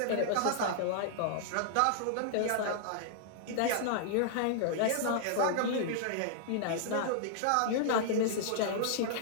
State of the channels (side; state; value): both; different; correlation -0.01